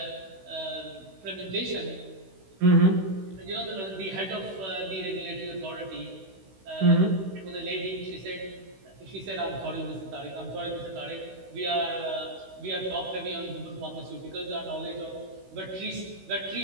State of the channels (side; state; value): left; late; 16 ms